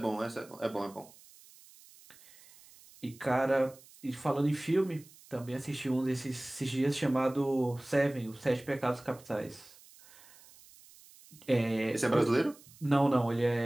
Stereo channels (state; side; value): noise; right; hiss, 24 dB below the sound